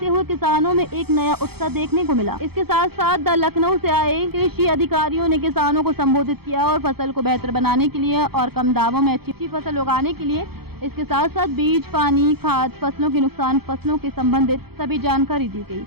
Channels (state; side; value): late; left; 0.96 ms